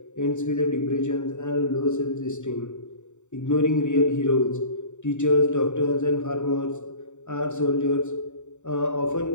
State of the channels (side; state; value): right; late; 0.84 ms